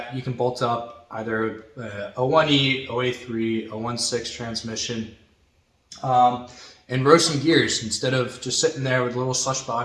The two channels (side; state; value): both; identical; correlation 1.00